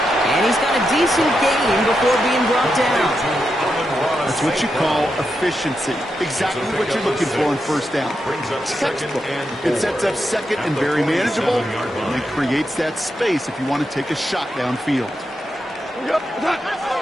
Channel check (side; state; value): both; normal; correlation 0.85